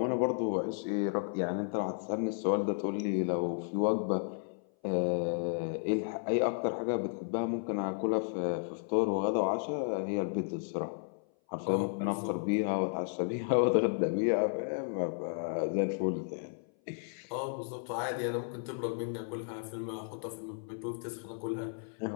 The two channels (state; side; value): silent; right; 56 dB below the other